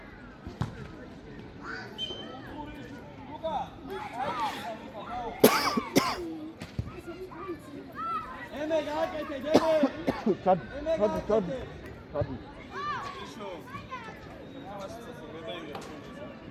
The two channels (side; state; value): both; identical; correlation 1.00